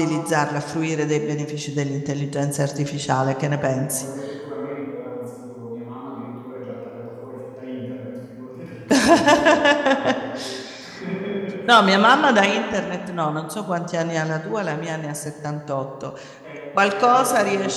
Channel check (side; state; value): both; identical; correlation 1.00